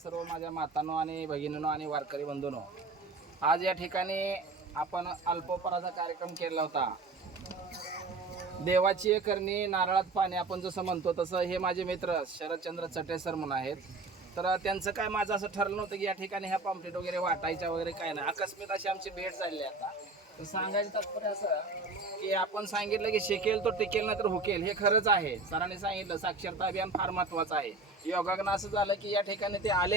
माझ्या मातांनो आणि भगिनींनो आणि वारकरी बंधूंनो, आज या ठिकाणी आपण अल्पोपहाराचा कार्यक्रम केला होता. देवाची करणी नारळात पाणी, आपण जसं म्हणतो तसं हे माझे मित्र शरदचंद्र चटे सर म्हणून आहेत. तर त्यांचं काय, माझं असं ठरलं नव्हतं की या ठिकाणी ह्या पॉम्पलेट वगैरे वाटायच्या वगैरे काय नाही. आकस्मित अशी आमची भेट झाली आता. तर सांगायचं तात्पर्य असं की आपण सांगितलं की शिकेल तो टिकेल नाही तर हुकेल, हे खरंच आहे. सरांनी सांगितलं साक्षरता अभियान फार महत्त्वाचं आहे. योगानं असं झालं की या ठिकाणी ते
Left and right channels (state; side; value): quieter; left; 3.4 dB